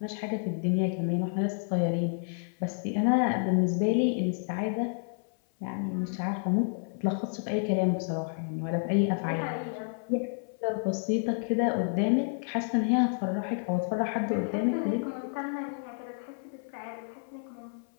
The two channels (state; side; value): silent; right; 58 dB below the other